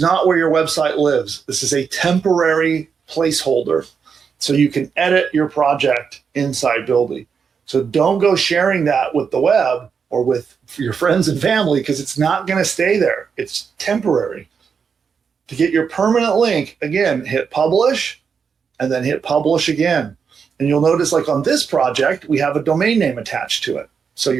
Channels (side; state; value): left; quieter; 6.2 dB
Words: not where your website lives. This is a temporary placeholder, so you can edit your project inside Buildy. So don't go sharing that with the web or with your friends and family, because it's not going to stay there. It's temporary. To get your permanent link, again, hit publish and then hit publish again. And you'll notice, like on this project, we have a domain name attached to it. So